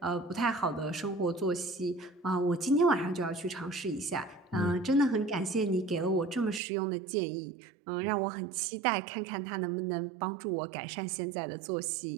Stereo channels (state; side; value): drops out; left; at 6.6 s